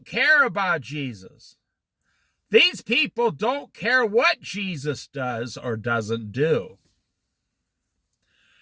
care about Jesus. These people don't care what Jesus does or doesn't do.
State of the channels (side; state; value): both; identical; correlation 1.00